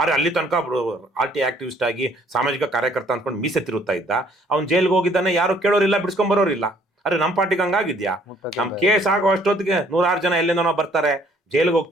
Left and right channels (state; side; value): normal; both; correlation 0.61